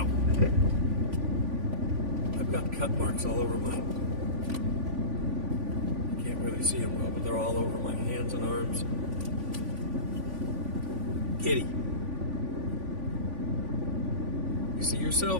I've got cut marks all over my... You can't really see them well, but they're all over my hands and arms. Kitty. You see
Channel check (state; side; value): late; left; 3.5 ms